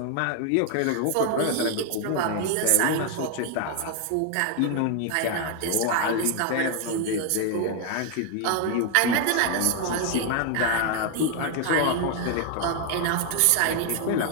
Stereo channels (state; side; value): different; both; correlation 0.00